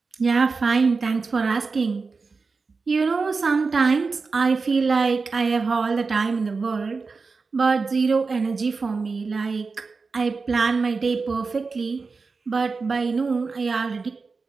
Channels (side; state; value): left; quieter; 4.4 dB